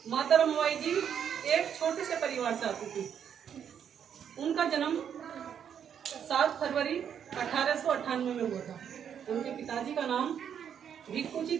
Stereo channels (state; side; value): quieter; left; 8.4 dB